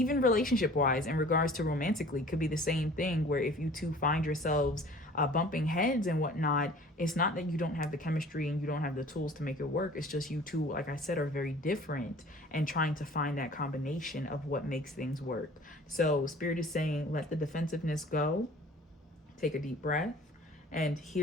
relationship wise, in regards to romantically, could be the same thing where if you two find yourselves bumping heads and whatnot, it's not that you don't have the chemistry and you don't have the tools to make it work. It's just you two, like I said, are very different and trying to find that combination of what makes things work. So Spirit is saying, let the defensiveness go, take a deep breath, and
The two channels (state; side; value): normal; both; correlation 0.47